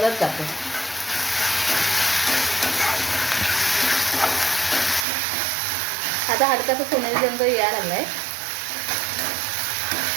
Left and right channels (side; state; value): left; drops out; at 5.1 s